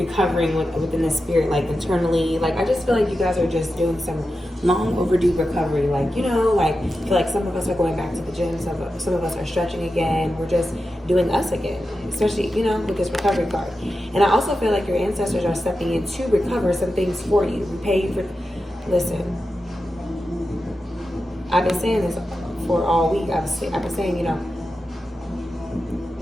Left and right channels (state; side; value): normal; both; correlation 0.91